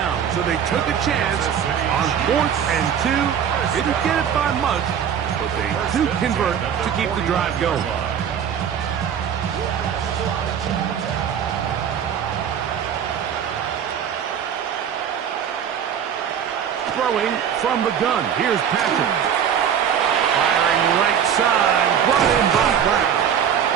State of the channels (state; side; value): quieter; left; 8.4 dB